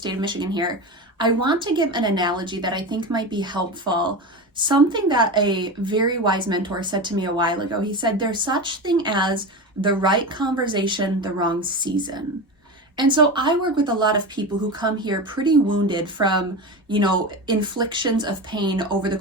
of Michigan here. I want to give an analogy that I think might be helpful. Something that a very wise mentor said to me a while ago. He said, there's such thing as the right conversation, the wrong season. And so I work with a lot of people who come here pretty wounded from, inflictions of pain over the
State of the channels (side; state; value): both; normal; correlation 0.24